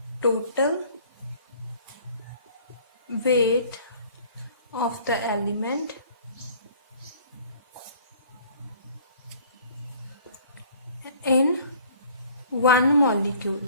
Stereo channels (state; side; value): inverted; both; correlation -0.53